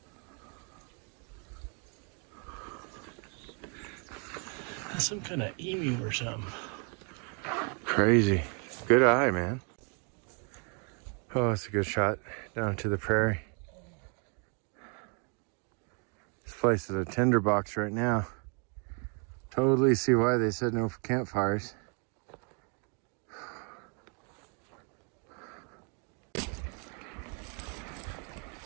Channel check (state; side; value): quieter; left; 37.6 dB